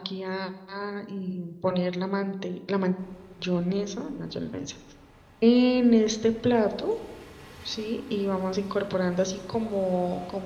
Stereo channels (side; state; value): both; identical; correlation 1.00